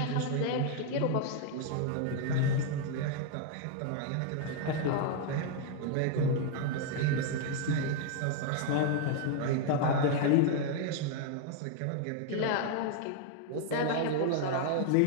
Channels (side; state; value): both; different; correlation 0.00